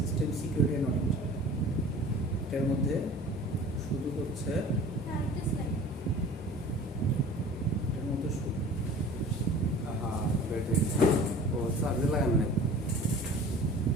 সিকিউরিটি অ্যান্ড অডিট এটার মধ্যে শুধু হচ্ছে এটার মধ্যে শুধু হ্যাঁ ব্যাটারি ও চার্জে লাগান নাই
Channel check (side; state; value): both; normal; correlation 0.43